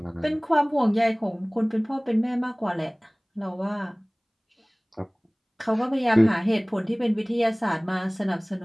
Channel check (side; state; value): both; identical; correlation 1.00